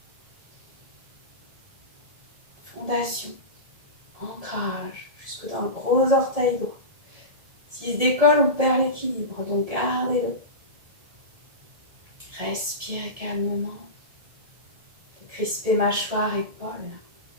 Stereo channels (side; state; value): left; late; 1.7 ms